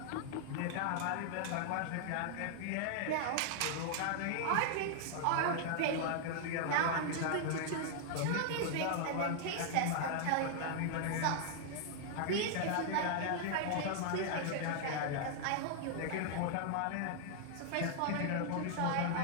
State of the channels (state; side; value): different; both; correlation 0.00